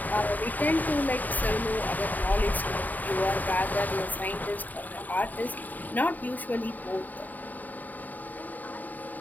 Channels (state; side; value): late; right; 0.083 ms